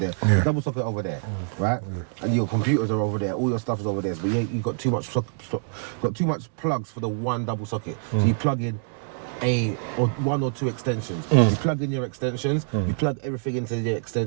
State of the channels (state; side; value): silent; left; 61 dB below the other